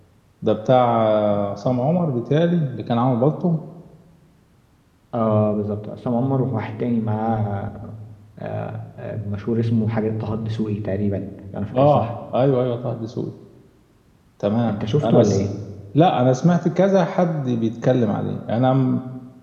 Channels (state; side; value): identical; both; correlation 1.00